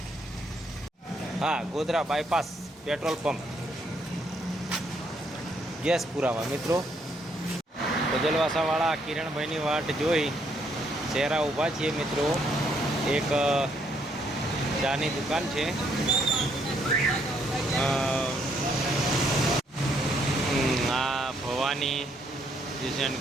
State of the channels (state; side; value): normal; both; correlation 0.71